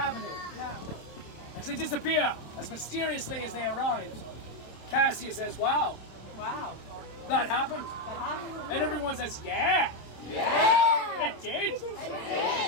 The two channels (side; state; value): right; late; 27 ms